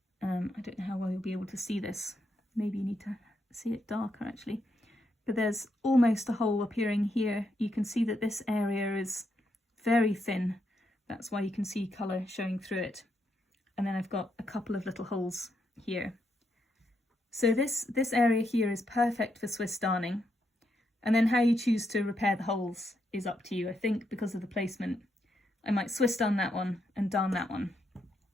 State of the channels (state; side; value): normal; both; correlation 0.80